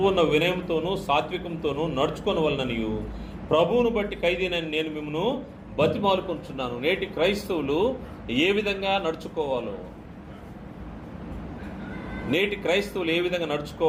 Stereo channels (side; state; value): both; identical; correlation 1.00